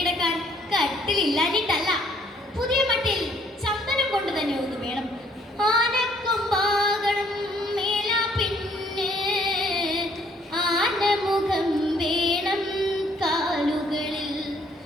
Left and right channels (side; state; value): both; normal; correlation 0.63